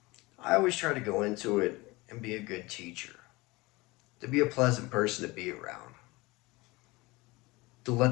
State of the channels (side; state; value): right; quieter; 22.7 dB